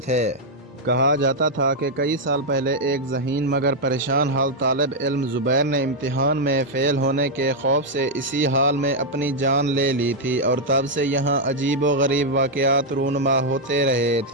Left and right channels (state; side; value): normal; both; correlation -0.02